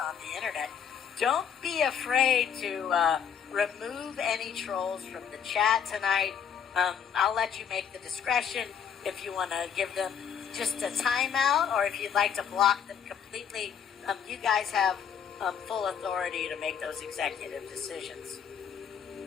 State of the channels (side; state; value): right; quieter; 7.8 dB